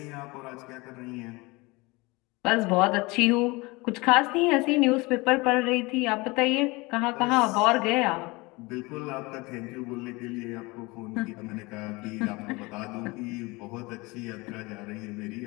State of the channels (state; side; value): quieter; right; 24.3 dB